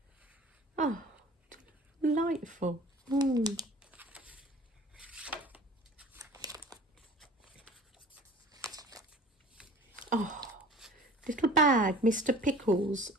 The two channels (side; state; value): both; normal; correlation 0.45